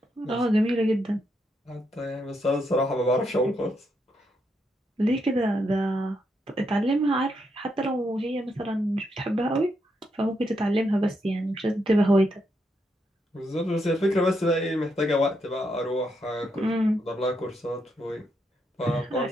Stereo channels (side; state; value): both; normal; correlation 0.80